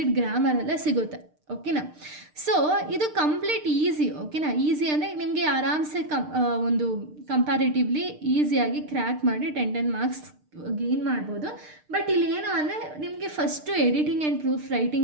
ಗ್ರಾಮರೆಲ್ಲ ಸಿಗುತ್ತೆ. ಓಕೆನಾ? ಸೊ ಇದು ಕಂಪ್ಲೀಟ್ ಈಸಿ. ಓಕೆನಾ? ಈಸಿ ಅಂದರೆ ನಿಮಗೆ ಆರಾಮ್ಸೆ ಒಂದು ಕಂಪ್ಯಾರಿಟಿವ್ಲಿ ಈಸಿಯಾಗಿ ಕ್ರ್ಯಾಕ್ ಮಾಡಿ 10 ಮಾರ್ಕ್ಸ್ ಗೇನ್ ಮಾಡ್ಬೋದು. ಬಟ್ ಇಲ್ಲಿ ಏನು ಅಂದರೆ ನಿಮಗೆ first editing and proof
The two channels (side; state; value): left; late; 6.6 ms